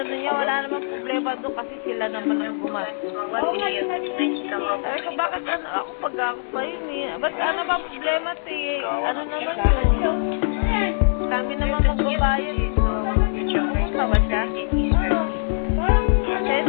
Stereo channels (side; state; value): right; silent; digital silence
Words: niya wala namang problema doon kasi sila naman ang gumastos. Oo nga, Sabi ko, bakit ano ako pag ako pa yun eh? Ba't ano ba ang problema eh? Ano naman yun? Kami naman magbabayad eh. Pumunta ba siya?